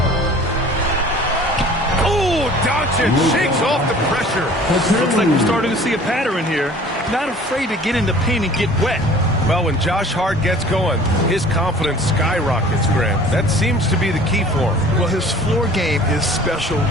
Doncic shakes off the pressure. Looks like we're starting to see a pattern here. Not afraid to get in the paint and get wet. Well, when Josh Hart gets going, his confidence skyrockets, Grant. That seems to be the key for him. Well, his floor game is special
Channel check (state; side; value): normal; both; correlation 0.48